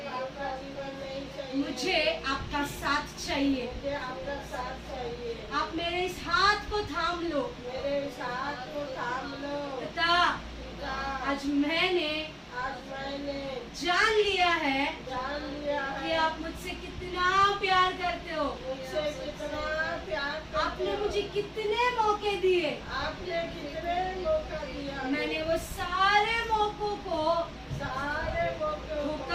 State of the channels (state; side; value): identical; both; correlation 1.00